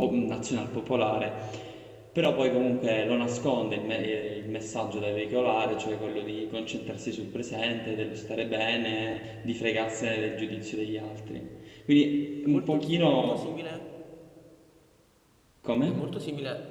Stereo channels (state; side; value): identical; both; correlation 1.00